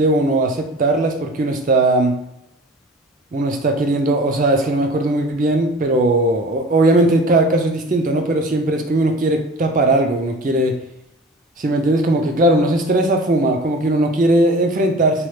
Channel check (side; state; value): both; normal; correlation 0.40